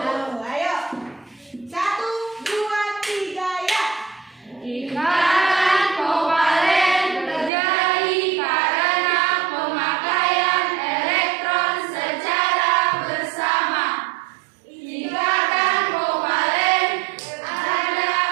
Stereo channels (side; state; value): left; drops out; at 7.5 s